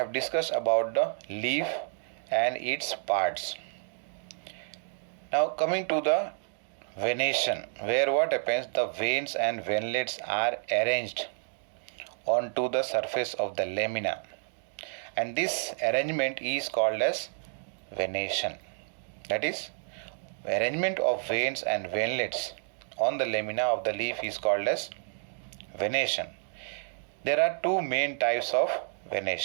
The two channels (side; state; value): left; silent; digital silence